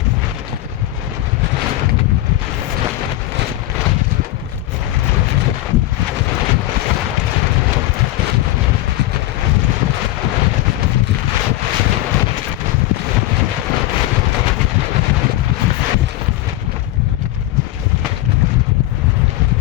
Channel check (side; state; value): right; quieter; 16.0 dB